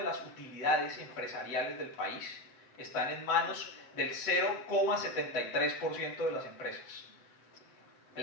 las utilidades empresariales del país están en manos del 0,73% de las empresas.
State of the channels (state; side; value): late; right; 7.6 ms